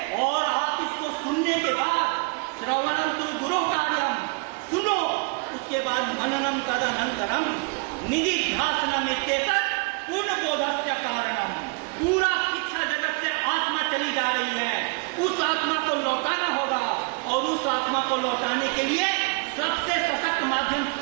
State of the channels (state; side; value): quieter; left; 31.6 dB